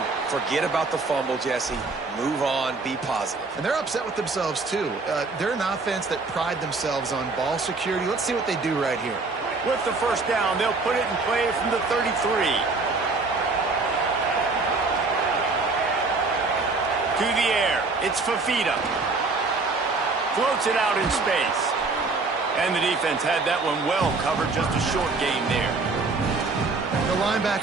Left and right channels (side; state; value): left; quieter; 3.8 dB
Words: Forget about the fumble, Jesse. Move on. Be positive. And they're upset with themselves, too. They're an offense that pride themselves on ball security. Let's see what they do right here. With the first down, they'll put it in play from the 33. To the air. It's Fafita. Floats it out in space. And the defense had that one well covered, just a short gain there. The